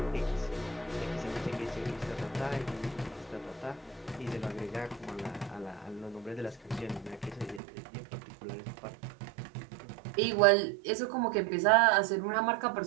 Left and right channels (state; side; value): drops out; left; at 7.6 s